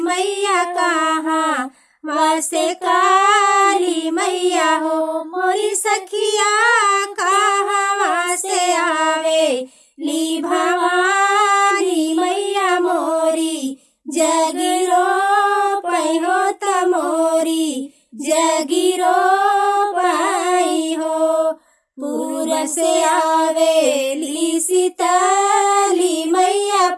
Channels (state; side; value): identical; both; correlation 1.00